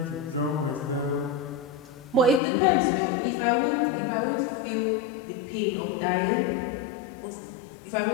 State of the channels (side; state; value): right; drops out; at 2.4 s